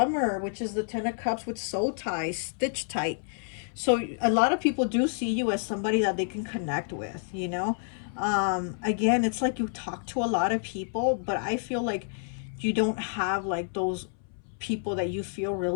which is the Ten of Cups with soul ties, stitch tight. So a lot of people do see you as somebody that they can connect with, you know. Again, it's like you talk to a lot of people, but I feel like you don't have like those people that you feel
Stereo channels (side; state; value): right; silent; 59 dB below the other